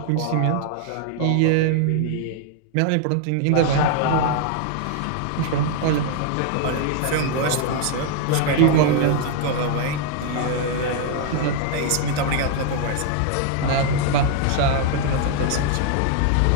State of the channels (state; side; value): different; both; correlation 0.00